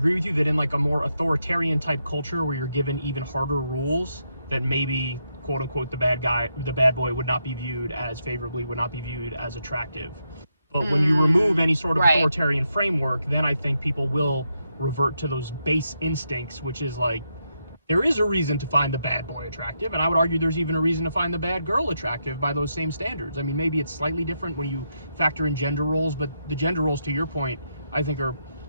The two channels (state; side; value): inverted; both; correlation -0.82